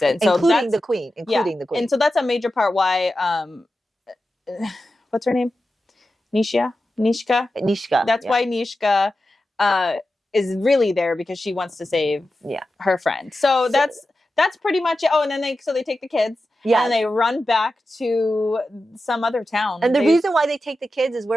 it. And so including the queen. And so that's a major part why what's her name? Nishka. That's why Nishka is really there, because she wants to save her friend. So that's pretty much it. Oh, and then they take the kids. Yeah. And they run back to some other town. And the reason why they take the kids is,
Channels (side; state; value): both; normal; correlation 0.92